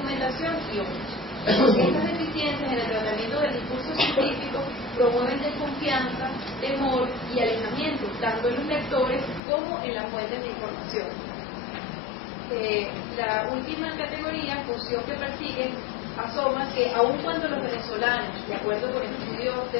y otros. Estas deficiencias en el tratamiento del discurso científico promueven desconfianza, temor y alejamiento, tanto en los lectores como en las fuentes de información. La última categoría, función que persiguen, asoma que aun cuando los venezolanos, de acuerdo con estudios de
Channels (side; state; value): right; drops out; at 9.4 s